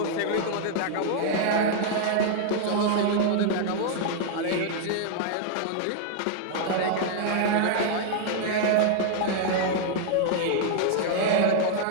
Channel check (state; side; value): different; both; correlation -0.01